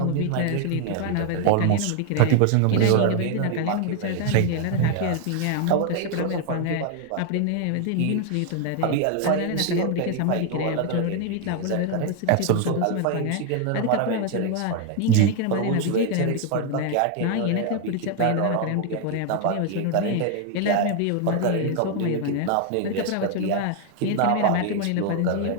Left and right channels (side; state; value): both; different; correlation 0.01